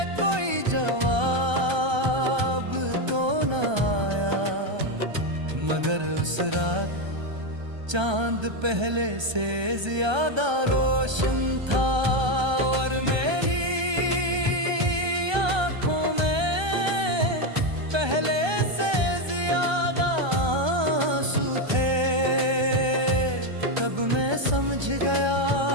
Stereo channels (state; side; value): late; left; 1.3 ms